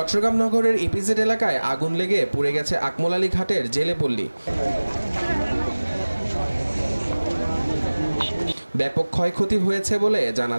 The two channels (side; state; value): both; inverted; correlation -1.00